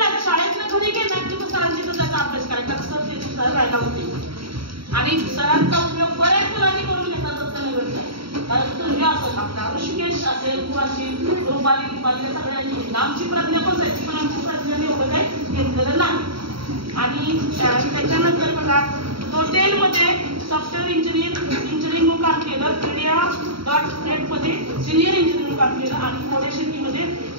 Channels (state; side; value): late; left; 0.74 ms